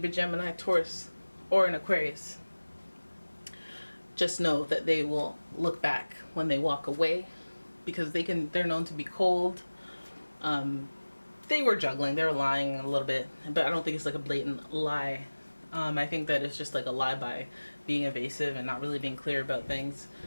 Gemini, Taurus, or an Aquarius, just know that they will look back when they walk away, because they're known to be cold. They were juggling, they were lying a little bit, but I don't think it's like a blatant lie. I think that it's just like a lie by being evasive and not really being clear about things.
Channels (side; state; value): both; inverted; correlation -1.00